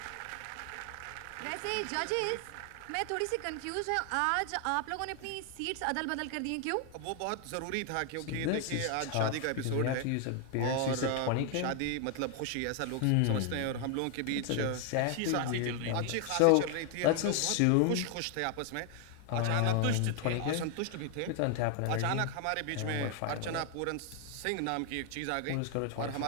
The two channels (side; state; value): both; different; correlation 0.00